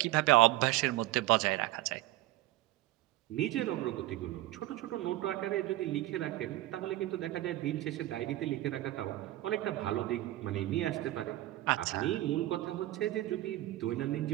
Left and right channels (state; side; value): quieter; left; 16.5 dB